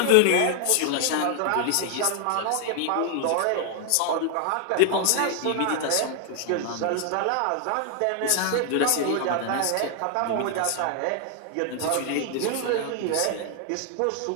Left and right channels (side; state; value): both; different; correlation 0.00